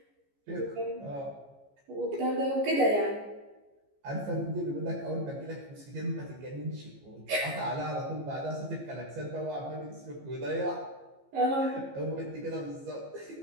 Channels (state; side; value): late; left; 15 ms